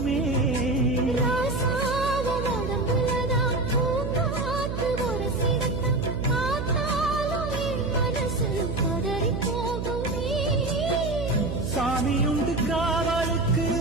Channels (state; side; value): noise; right; hum, 4 dB below the sound